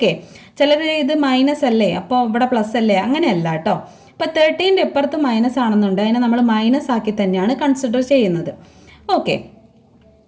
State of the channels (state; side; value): identical; both; correlation 1.00